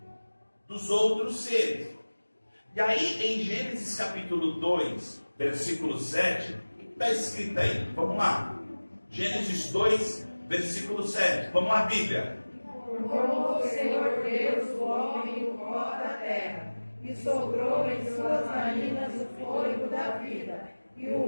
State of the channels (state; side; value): inverted; both; correlation -1.00